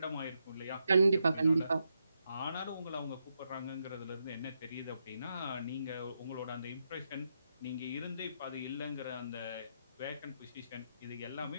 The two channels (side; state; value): both; inverted; correlation -0.83